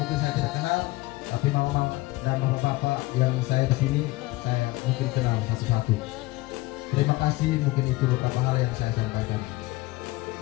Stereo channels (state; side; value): quieter; right; 20.4 dB